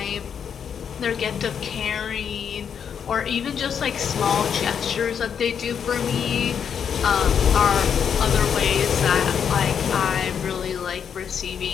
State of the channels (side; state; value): right; quieter; 7.6 dB